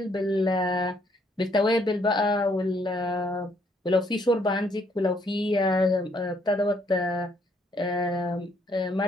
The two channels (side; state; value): both; normal; correlation 0.68